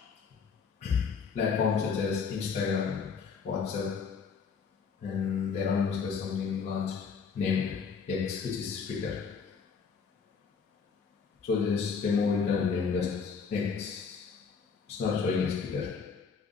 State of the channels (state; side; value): quieter; right; 5.8 dB